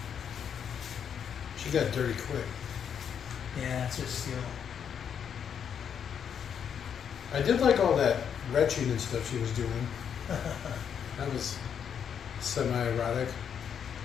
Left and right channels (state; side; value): quieter; right; 8.0 dB